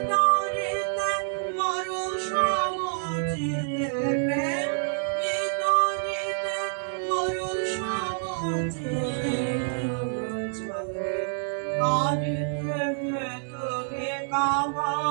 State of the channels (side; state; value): left; silent; digital silence